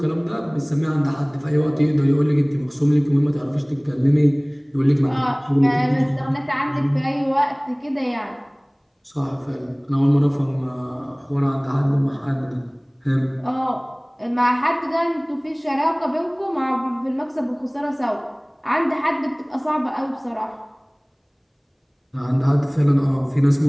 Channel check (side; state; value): both; identical; correlation 1.00